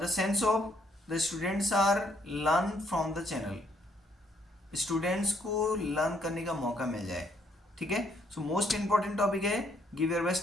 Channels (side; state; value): both; normal; correlation 0.70